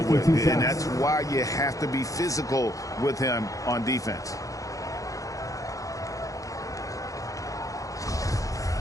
with. And that's why you have to be physical with him on defense.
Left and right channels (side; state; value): right; late; 0.16 ms